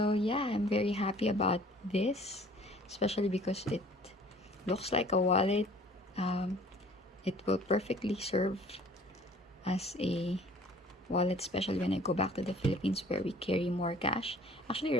yeah, I'm very happy about this, especially because it looks like a wallet. It will perfectly serve as a wallet, especially when I go back to the Philippines where we carry more cash. Actually,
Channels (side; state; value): both; normal; correlation 0.52